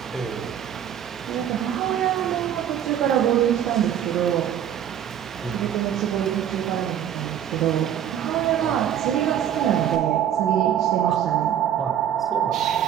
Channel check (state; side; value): quieter; left; 10.0 dB